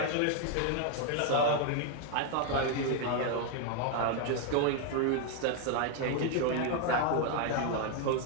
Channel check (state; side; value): different; both; correlation 0.01